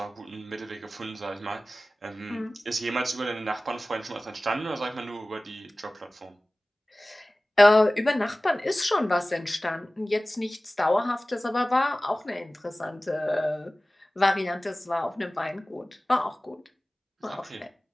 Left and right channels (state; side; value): normal; both; correlation 0.97